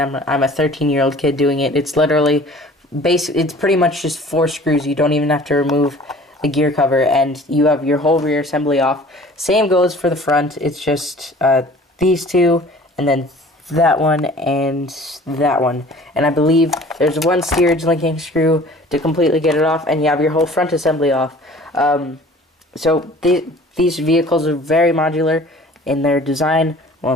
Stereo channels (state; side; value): normal; both; correlation 0.48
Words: I'm a 13-year-old kid doing it. It's literally it's pretty much just 4 screws. You don't even have to remove the gear cover, and you have your whole rear assembly off. Same goes for the front. It's just these 2, and then that one and that one, and I believe there's one steerage linking screw to completely get it off, and you have your whole front assembly off. So these vehicles are very modular in their design.